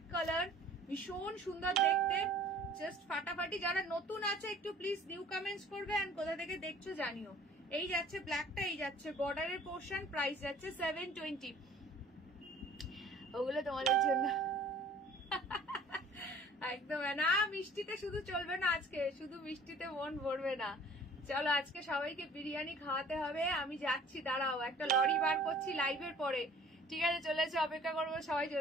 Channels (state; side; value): normal; both; correlation 0.51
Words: কালার, ভীষণ সুন্দর দেখতে, জাস্ট ফাটাফাটি। যারা নতুন আছে একটু প্লিজ নিউ কমেন্টস করবে, এন্ড কোথা থেকে দেখছো জানিও। এই যাচ্ছে ব্ল্যাকটা, এই যাচ্ছে বর্ডারের পোর্শন, প্রাইস যাচ্ছে 720। ওগুলো তোমাদের জন্য একদম না। মিষ্টিতে শুধু চলবে না, আজকে শুধু মিষ্টিতে মন ভরবে না। চলো, আজকে সবাইকে বিরিয়ানি খাওয়াতে হবে। আমি যাচ্ছি, দাঁড়াও, একটা লরি বার করছি লাইভের পরে, ঠিক আছে? চলে এসে অপেক্ষা করবো সবাই।